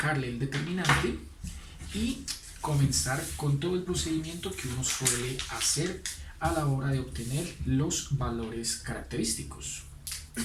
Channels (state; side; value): identical; both; correlation 1.00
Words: el determinante y comenzar con todo el procedimiento que uno suele hacer a la hora de obtener los valores característicos.